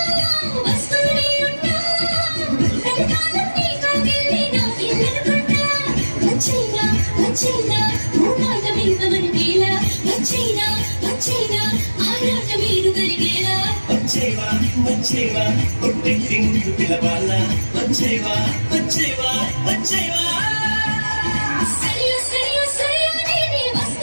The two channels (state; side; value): inverted; both; correlation -1.00